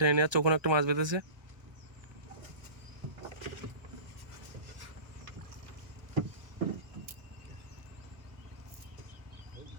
নিয়ে যাচ্ছে, ওখানে একটা মাছ বেঁধেছে।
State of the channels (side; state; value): left; late; 1.2 ms